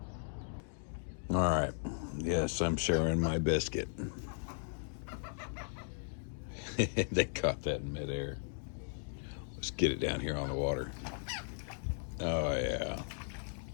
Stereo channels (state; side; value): silent; right; digital silence